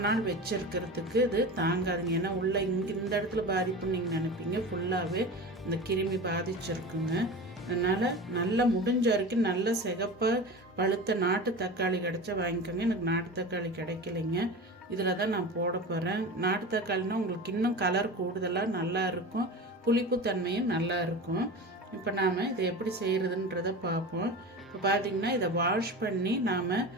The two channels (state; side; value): normal; both; correlation 0.30